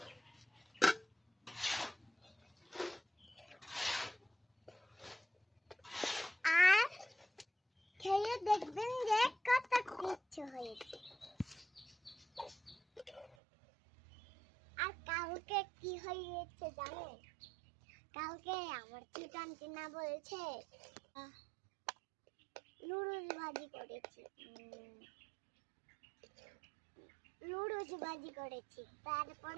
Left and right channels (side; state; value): left; drops out; at 13.4 s